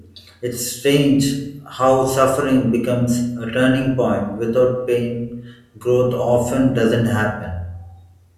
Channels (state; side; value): identical; both; correlation 1.00